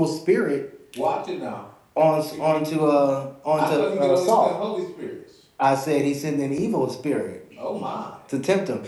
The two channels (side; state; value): both; identical; correlation 1.00